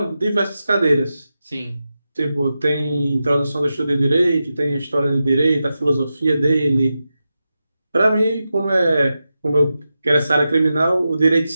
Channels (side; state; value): both; inverted; correlation -0.91